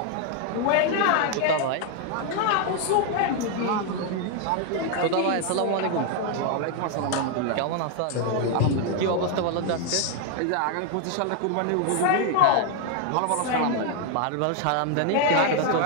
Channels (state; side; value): different; both; correlation 0.01